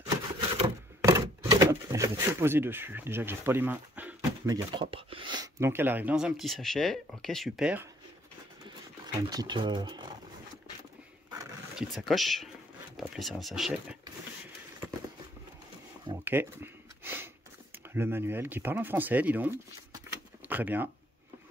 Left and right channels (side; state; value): both; normal; correlation 0.64